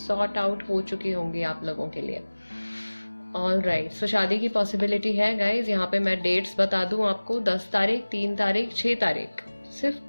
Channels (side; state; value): both; inverted; correlation -1.00